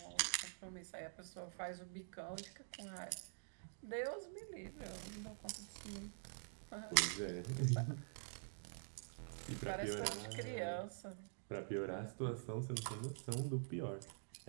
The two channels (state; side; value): silent; left; digital silence